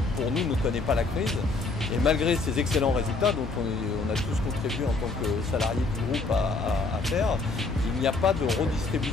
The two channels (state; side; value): quieter; right; 3.7 dB